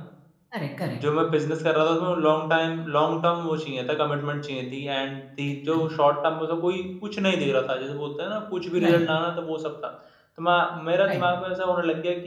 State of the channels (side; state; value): both; identical; correlation 1.00